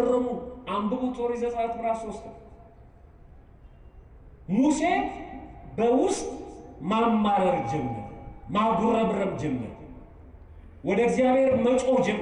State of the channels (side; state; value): both; identical; correlation 1.00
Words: አንብቡት ኦሪት ዘጸአት ምዕራፍ 3 ሙሴ በውስጥ ማማረር ጀመረ፣ ማጉረምረም ጀመረ፣ ወደ እግዚአብሔር መጮህ